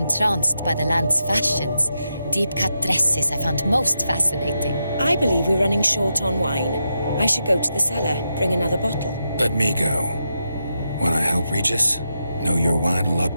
by the land's fashions. Deep-cut dresses I found most fascinating. I believe we're running short on wine. I should go to the cellar, bring another bottle. Let me go. Wanna help, Regis? Know your wine a lot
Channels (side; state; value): both; inverted; correlation -0.86